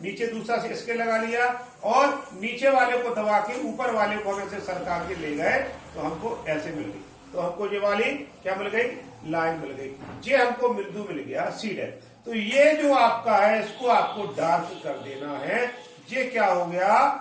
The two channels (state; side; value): identical; both; correlation 1.00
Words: नीचे दूसरा स्केल लगा लिया, और नीचे वाले को दबा के ऊपर वाले को हम ऐसे सरका के ले गए, तो हमको ऐसे मिल गई। तो हमको ये वाली क्या मिल गई, लाइन मिल गई। ये हमको बिंदु मिल गया C'। तो ये जो आपका है, इसको आपको डार्क कर देना है। ये क्या हो गया,